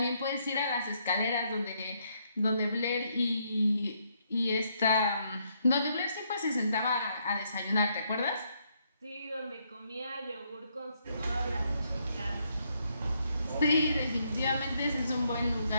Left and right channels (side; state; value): both; inverted; correlation -0.74